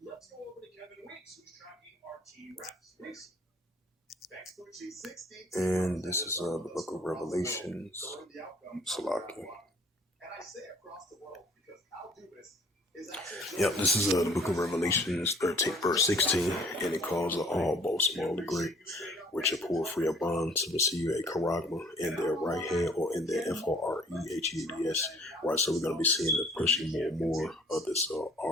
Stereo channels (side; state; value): both; normal; correlation 0.56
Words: And this is the book of Revelations. Salaki. Yep, this is the book of Revelations 13, verse 16, and it calls all, both small and great, which are poor free of bond to receive a charagma in their right hand or in their FOREHEADS. Right, so we're going to be seeing the pushing more and more of this